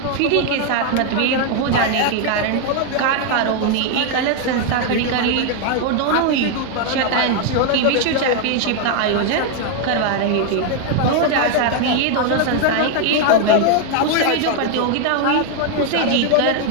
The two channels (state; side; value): different; both; correlation 0.00